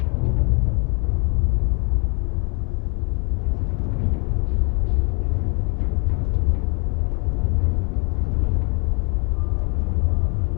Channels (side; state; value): right; quieter; 32.0 dB